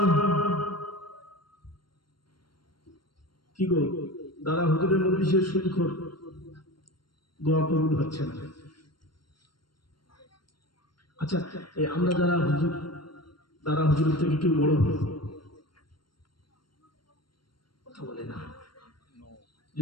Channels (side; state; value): right; late; 0.72 ms